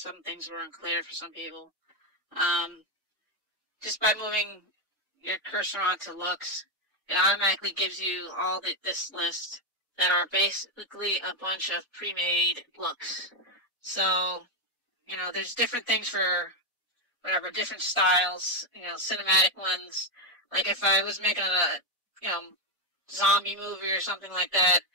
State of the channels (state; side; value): normal; both; correlation 0.05